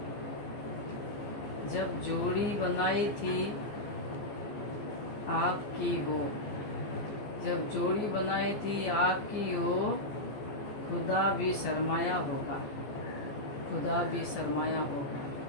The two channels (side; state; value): right; late; 14 ms